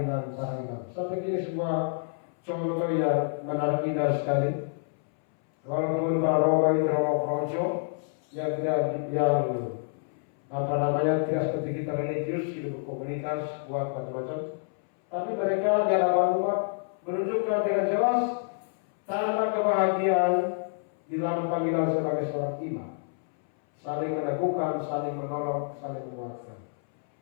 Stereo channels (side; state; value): right; silent; 59 dB below the other